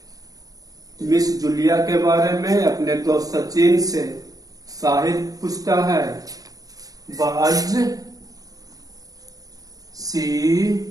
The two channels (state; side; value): late; left; 0.18 ms